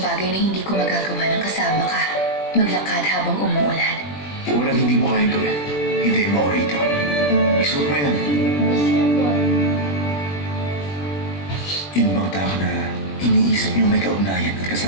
na hindi ko magagawa ng kasama ka. Maglakad habang umuulan. Walang hindi mo kayang gawin. Hintayin mo ako rito. Isuot mo yan. Yun bang tao na iniisip niyong may kaugnayan at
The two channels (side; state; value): right; late; 21 ms